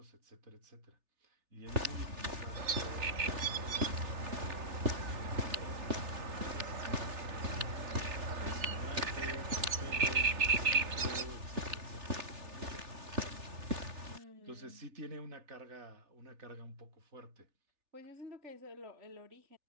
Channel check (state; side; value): late; left; 3.4 ms